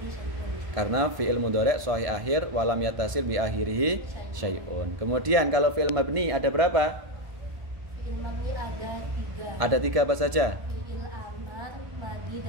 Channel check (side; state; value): left; late; 1.5 ms